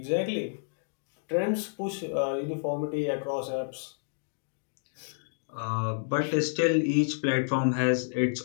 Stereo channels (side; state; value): right; silent; digital silence